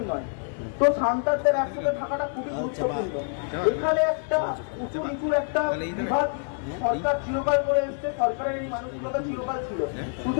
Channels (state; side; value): silent; right; 61 dB below the other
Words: নয়। তো সাঁওতালদের একসাথে থাকাটা খুবই গুরুত্বপূর্ণ। এখানে একটা উঁচু নিচুর একটা বিভাগ সরকার চিরকাল করে এসছে, সরকারের এই মানসিকতা চিরকাল ছিল।